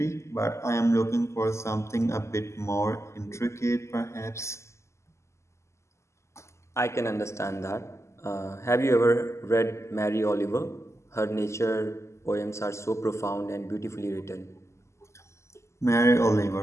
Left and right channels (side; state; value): right; late; 0.13 ms